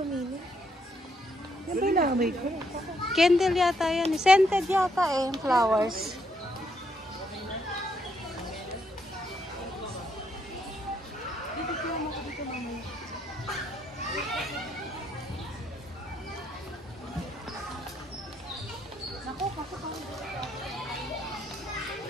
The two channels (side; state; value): both; normal; correlation 0.74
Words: mini? Yan ba yung nakamay ko? Candle yata yan. Scented yata eh, flowers.